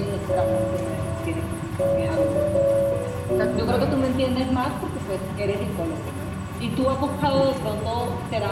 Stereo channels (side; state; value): both; identical; correlation 1.00